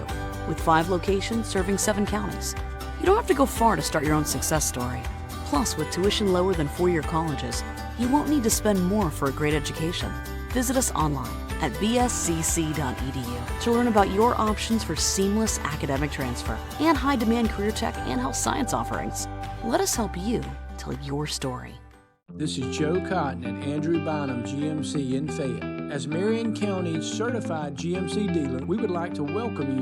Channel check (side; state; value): both; identical; correlation 1.00